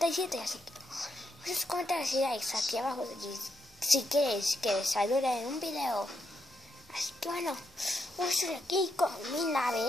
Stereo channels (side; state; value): both; normal; correlation 0.80